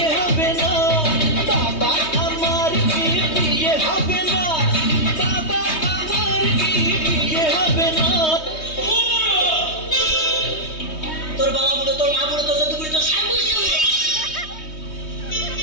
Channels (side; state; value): right; late; 3.2 ms